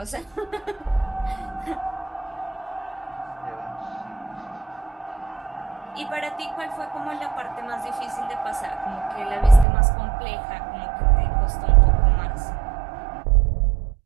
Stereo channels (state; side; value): drops out; left; at 9.7 s